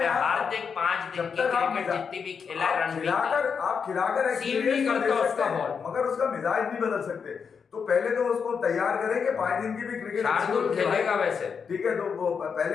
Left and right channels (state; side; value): quieter; right; 6.2 dB